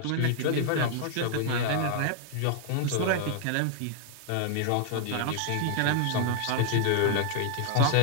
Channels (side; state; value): both; different; correlation -0.01